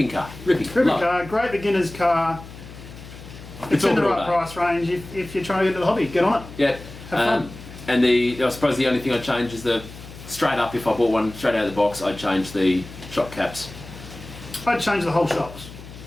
car. Ripping Ripping car, great beginner's car. It's in the right price range. If you're trying to get into the hobby, get on it. Yeah. Have fun. And I suppose the only thing I'd change is straight up, if I bought one straight out of the box, I'd change the shock caps. I'd change the whole shocks.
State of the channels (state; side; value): noise; left; hum, 16 dB below the sound